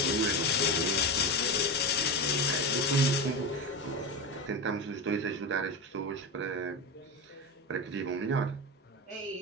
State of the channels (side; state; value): both; normal; correlation 0.19